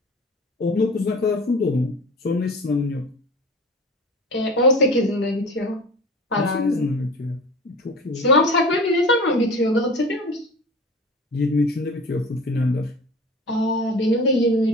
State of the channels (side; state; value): both; normal; correlation 0.37